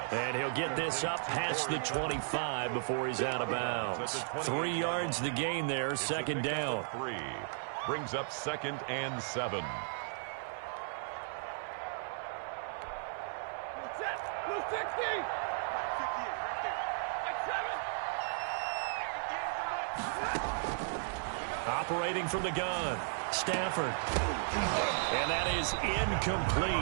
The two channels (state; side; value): silent; left; 54 dB below the other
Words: And he'll get this up past the 25 before he's out of bounds. 3 yards the gain there, 2nd down. 3 brings up 2nd and 7. Operating from the gun, Stafford. And that is